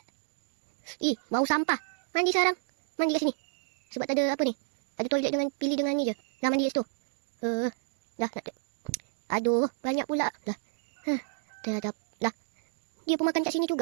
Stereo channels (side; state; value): left; silent; digital silence